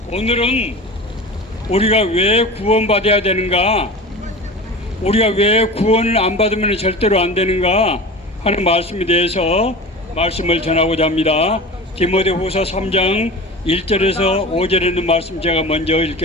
오늘은 우리가 왜 구원받아야 되는가, 우리가 왜 구원을 안 받으면 절대로 안 되는가 하는 말씀에 대해서 말씀을 전하고자 합니다. 디모데후서 3장 1절에서 5절에 있는 말씀 제가 먼저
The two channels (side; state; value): both; normal; correlation 0.33